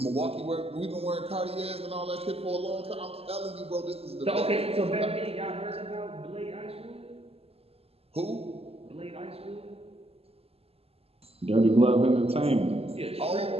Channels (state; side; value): late; left; 0.29 ms